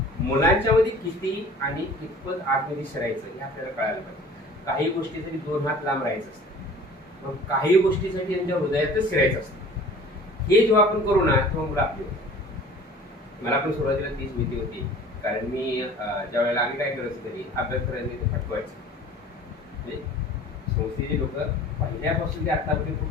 मुलांच्या मध्ये किती आणि कितपत आतमध्ये शिरायचं हे आपल्याला कळायला पाहिजे. काही गोष्टीसाठी 2 हात लांब राहायचं असतं, मग काही गोष्टीसाठी त्यांच्या हृदयातच शिरायचं असतं. हे जेव्हा आपण करू ना तेव्हा मुलं आपली होती. मला पण सुरुवातीला तीच भीती होती, कारण मी ज्या वेळेला आम्ही काय करायचं तरी अभ्यास करायचं ते फटवायचं. म्हणजे संस्थेची लोक पहिल्यापासून ते आतापर्यंत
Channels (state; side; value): normal; both; correlation 0.46